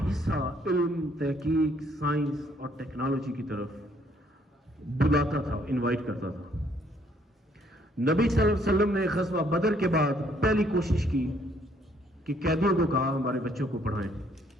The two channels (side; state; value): both; normal; correlation 0.65